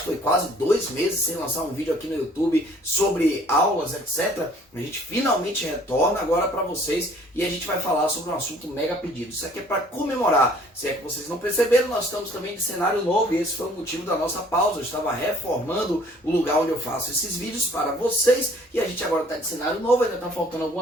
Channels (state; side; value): normal; both; correlation 0.56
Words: que foi quase 2 meses sem lançar um vídeo aqui no YouTube sobre aulas, etc. A gente finalmente retorna agora para vocês e a gente vai falar sobre um assunto mega pedido. Isso aqui é para comemorar. Se é que vocês não perceberam, nós estamos também de cenário novo e esse foi o motivo da nossa pausa. Eu estava reformando o lugar onde eu faço esses vídeos para vocês e a gente agora está de cenário novo. Ainda está faltando